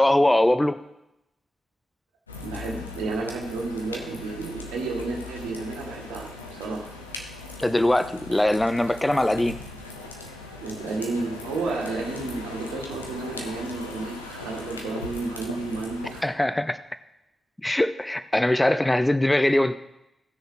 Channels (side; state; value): both; normal; correlation 0.93